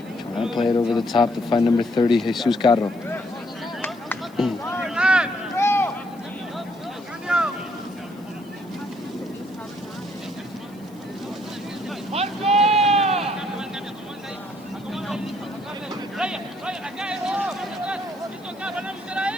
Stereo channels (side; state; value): left; noise; hiss, 28 dB below the sound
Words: Trying to play it over the top to find number 30, Jesus Carro.